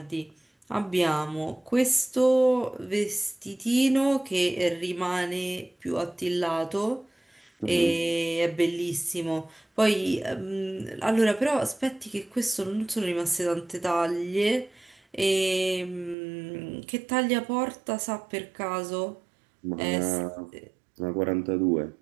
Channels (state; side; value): drops out; left; at 16.2 s